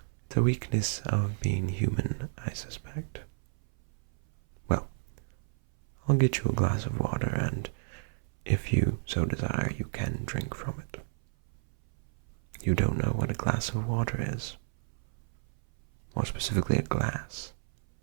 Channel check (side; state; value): left; silent; 57 dB below the other